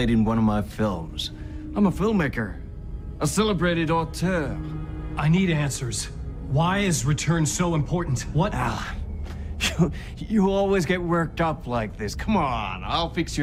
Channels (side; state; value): both; identical; correlation 1.00